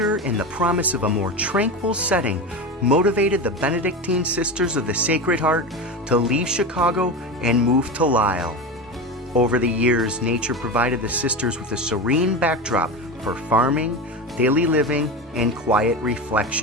and the promise of a more tranquil setting motivated the Benedictine Sisters of the Sacred Heart to leave Chicago and move to Lisle. Over the years, nature provided the sisters with a serene backdrop for farming, daily living, and quiet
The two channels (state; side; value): normal; both; correlation 0.22